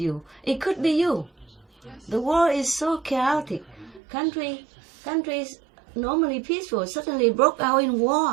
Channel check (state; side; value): drops out; left; at 4.0 s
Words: It could be you. The world is so chaotic. Countries normally peaceful suddenly broke out in